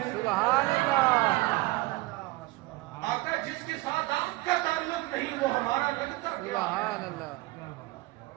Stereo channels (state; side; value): quieter; left; 21.0 dB